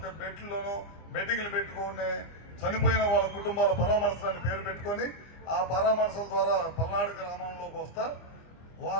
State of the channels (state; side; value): late; right; 25 ms